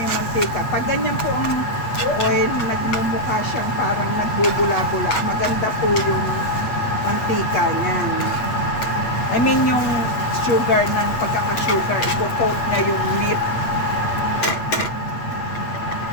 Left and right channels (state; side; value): late; right; 8.6 ms